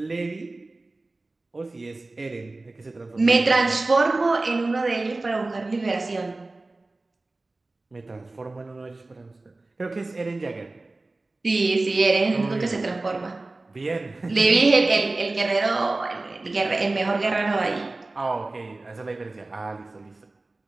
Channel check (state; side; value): quieter; left; 3.1 dB